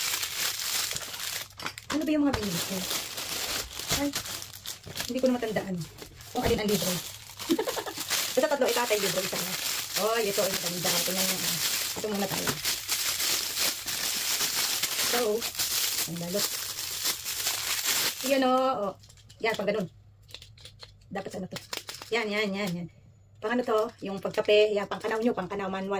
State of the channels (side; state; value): both; identical; correlation 1.00